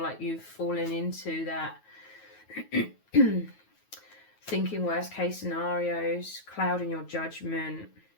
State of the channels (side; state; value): right; late; 9.3 ms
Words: you've fallen into that thinking worst case scenarios, clouding your judgment.